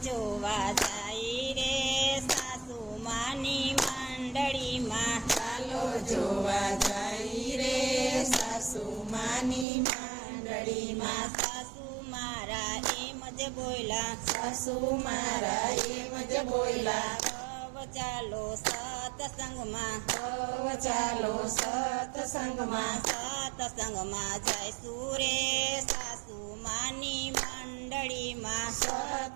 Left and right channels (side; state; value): left; drops out; at 9.7 s